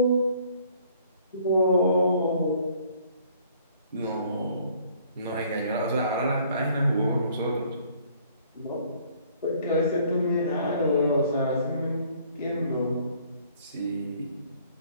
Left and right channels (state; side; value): inverted; both; correlation -0.59